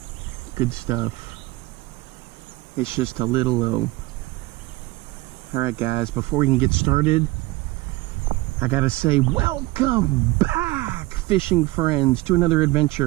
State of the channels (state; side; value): quieter; left; 20.2 dB